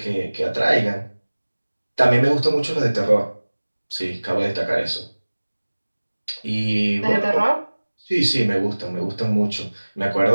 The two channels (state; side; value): inverted; both; correlation -1.00